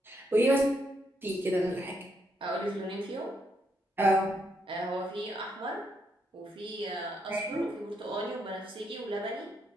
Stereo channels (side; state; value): both; normal; correlation 0.77